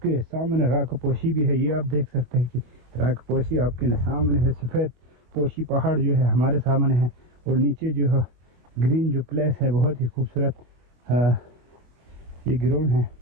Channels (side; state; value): left; late; 23 ms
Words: सामने राख पोशी भी है। ये आप देख सकते हैं कि राख पोशी आपके सामने है, सफ़ेद पोशी पहाड़ जो है हमारे सामने है, और नीचे जो है ग्रीन जो प्लेस है बहुत ही खूबसूरत ये ग्राउंड है।